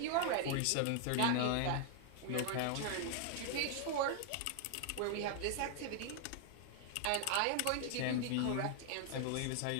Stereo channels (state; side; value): different; both; correlation 0.00